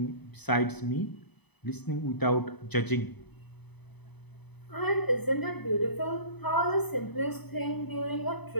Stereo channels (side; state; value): right; late; 0.99 ms